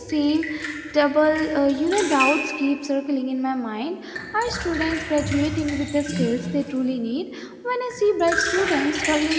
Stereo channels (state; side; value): identical; both; correlation 1.00